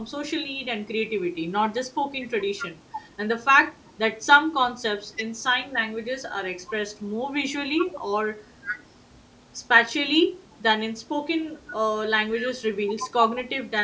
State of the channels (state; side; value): identical; both; correlation 1.00